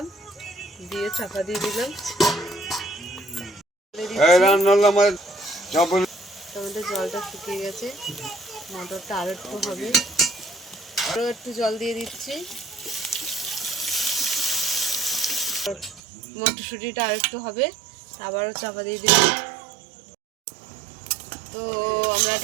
দিয়ে চাপা দিয়ে দিলাম। আমাদের জলটা শুকিয়ে গেছে, মটরটা আরো একটু হবে, আরো একটু জল দিয়ে দিচ্ছি। মটরশুঁটিটা আর একটু হবে, আবারও চাপা দিয়ে দিলাম। তো আমরা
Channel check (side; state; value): left; drops out; at 16.0 s